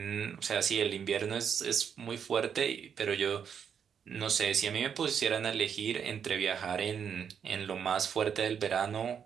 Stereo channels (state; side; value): quieter; left; 7.6 dB